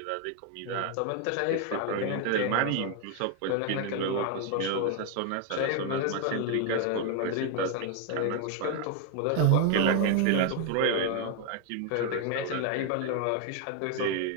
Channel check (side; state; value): both; different; correlation 0.01